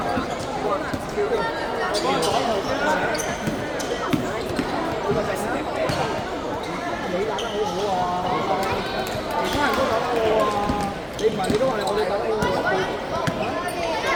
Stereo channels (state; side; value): identical; both; correlation 1.00